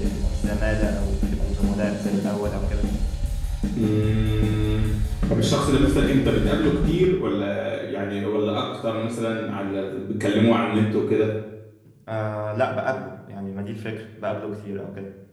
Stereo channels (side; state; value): both; identical; correlation 1.00